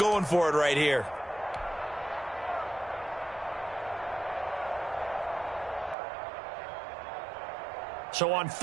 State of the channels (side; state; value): left; drops out; at 6.0 s